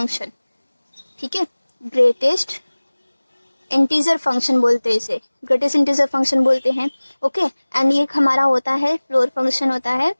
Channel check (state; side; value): inverted; both; correlation -1.00